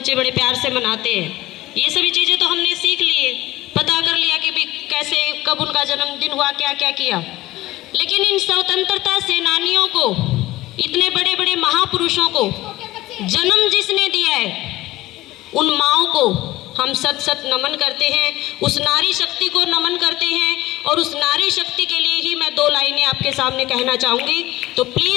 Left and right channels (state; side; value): quieter; right; 17.5 dB